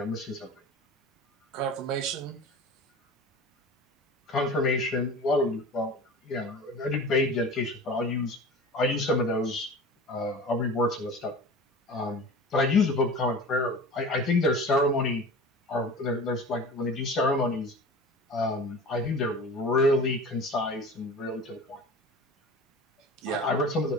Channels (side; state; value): both; normal; correlation 0.36